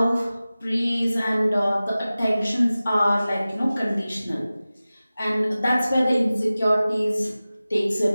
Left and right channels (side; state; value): both; inverted; correlation -0.97